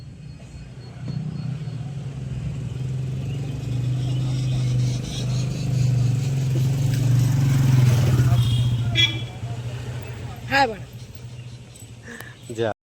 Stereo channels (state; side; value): identical; both; correlation 1.00